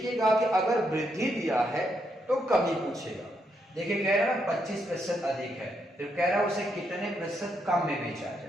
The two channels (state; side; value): normal; both; correlation 0.78